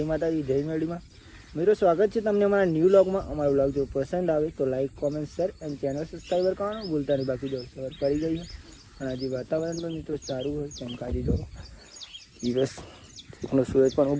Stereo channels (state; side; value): identical; both; correlation 1.00